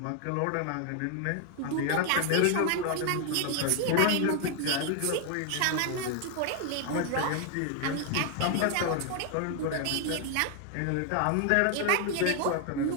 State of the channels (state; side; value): different; both; correlation 0.00